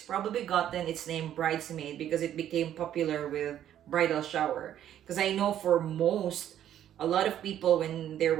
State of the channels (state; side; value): quieter; left; 11.0 dB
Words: probably gotten its name Bridesmaid because it became popular with bridal shower. Because I know for a lot of people, when they